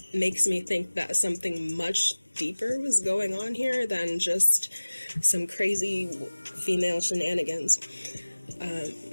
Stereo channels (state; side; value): inverted; both; correlation -1.00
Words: makes me think that something much deeper was going on here than just some crazy female shenanigans,